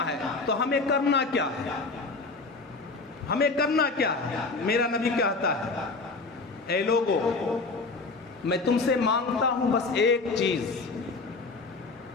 ہے. تو ہمیں کرنا کیا ہے؟ ہمیں کرنا کیا ہے؟ میرا نبی کہتا ہے، اے لوگو، میں تم سے مانگتا ہوں بس ایک چیز.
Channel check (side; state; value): right; quieter; 3.9 dB